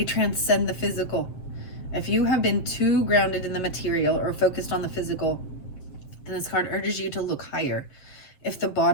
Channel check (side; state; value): right; late; 7.6 ms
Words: transcend the physical. If you have been too grounded in the material or focused on the physical, then this card urges you to look higher. If the